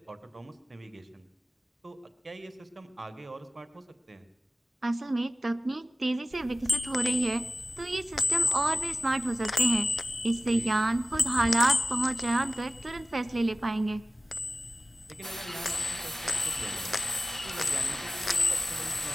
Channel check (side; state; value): both; normal; correlation 0.96